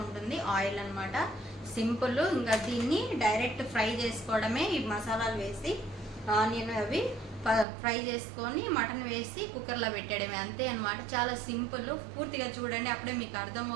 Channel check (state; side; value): drops out; left; at 7.7 s